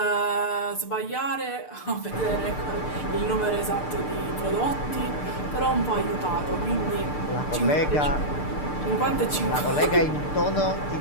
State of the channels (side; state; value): right; late; 6.7 ms